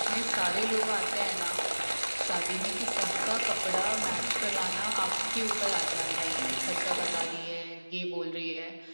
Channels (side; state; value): both; inverted; correlation -1.00